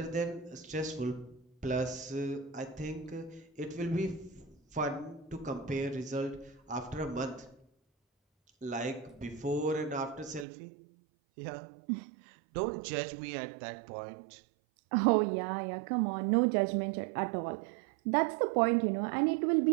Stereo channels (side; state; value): left; drops out; at 10.5 s